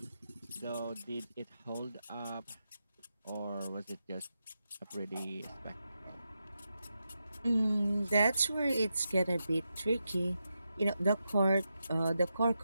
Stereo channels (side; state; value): both; inverted; correlation -0.87